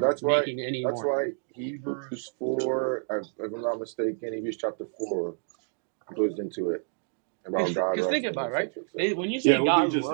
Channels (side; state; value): left; silent; 59 dB below the other